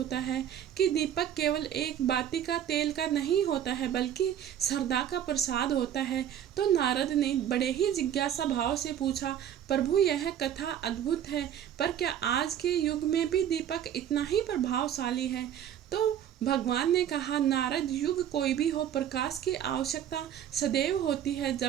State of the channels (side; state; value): left; quieter; 10.0 dB